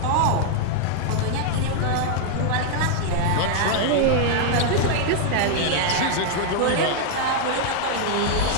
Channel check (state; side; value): different; both; correlation 0.00